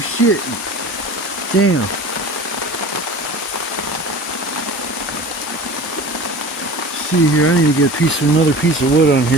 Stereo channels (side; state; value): both; normal; correlation 0.38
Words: Damn. See here, I need to get another piece of wood on